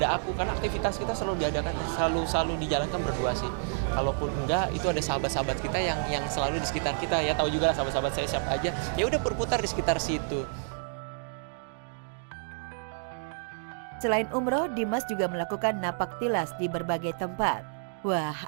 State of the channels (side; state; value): left; silent; digital silence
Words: aku, karena aktivitas kita selalu diadakan, selalu dijalankan berdua sih. Kalaupun enggak, itu ada sahabat-sahabat kita yang selalu di sekitar kita, ya tahu juga lah sahabat-sahabat saya siapa aja. Ya udah berputar di sekitar situ. Selain umroh, Dimas juga melakukan napak tilas di berbagai tempat. Wah,